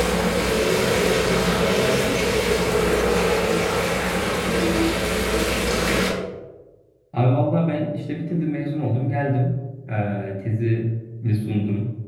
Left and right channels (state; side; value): identical; both; correlation 1.00